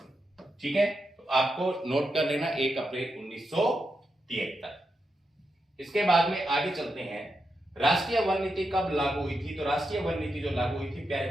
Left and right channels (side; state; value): both; normal; correlation 0.86